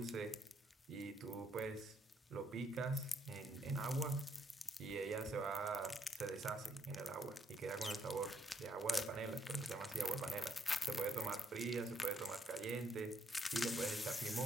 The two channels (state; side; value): normal; both; correlation 0.72